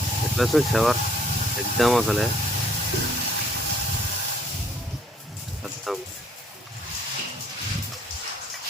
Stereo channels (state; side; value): normal; both; correlation 0.61